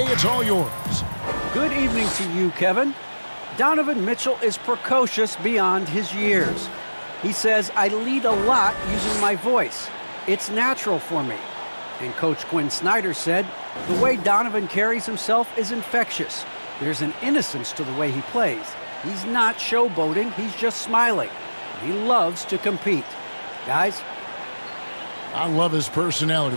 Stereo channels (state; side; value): inverted; both; correlation -1.00